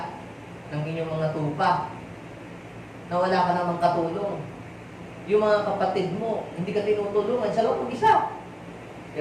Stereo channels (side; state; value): both; identical; correlation 1.00